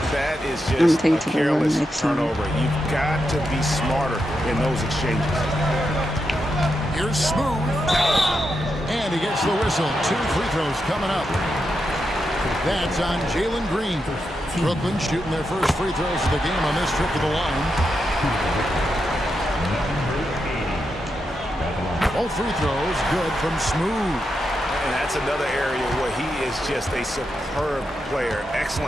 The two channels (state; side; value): normal; both; correlation 0.85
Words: That is gonna just take a it to the rim careless next time. turnover. You've got to be smarter in those exchanges. Here's Smooth. And he gets the whistle. 2 free throws coming up. That's on Jalen Green. Brooklyn shooting their first free throws of the game on this trip to the line. Both free throws good from Smooth. And that's another area where he is just a superb player.